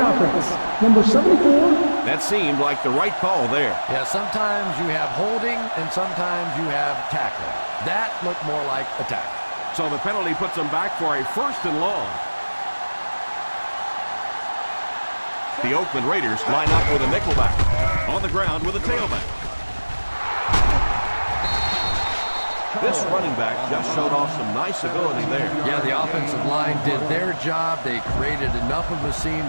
offense, number 74. That seemed like the right call there. Yeah, sometimes you have holding and sometimes you have tackling. That looked more like a tackle. So the penalty puts them back for a first and long. The Oakland Raiders line up with a nickelback. On the ground with a tailback. This running back just showed off some nice ability there. Yeah, the offensive line did their job. They created enough of a seam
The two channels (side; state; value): both; inverted; correlation -1.00